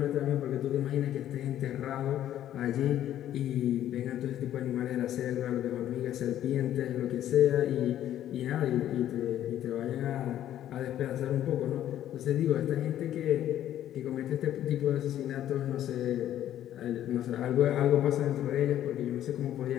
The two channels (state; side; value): quieter; right; 11.8 dB